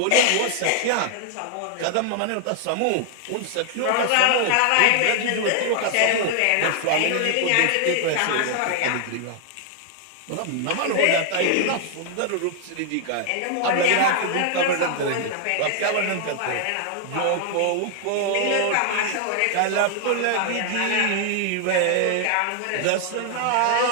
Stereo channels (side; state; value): both; different; correlation 0.00